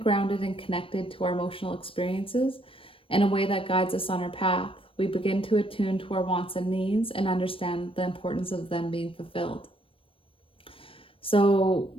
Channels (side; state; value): right; late; 0.26 ms